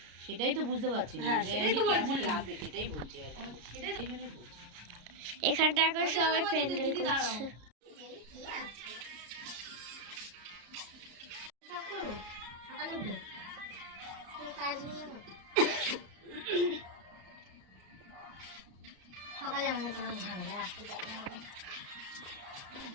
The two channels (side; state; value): left; late; 33 ms